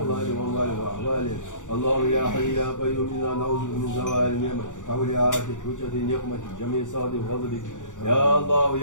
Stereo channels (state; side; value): late; right; 0.86 ms